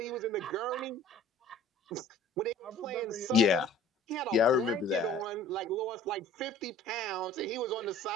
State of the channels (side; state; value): both; normal; correlation 0.48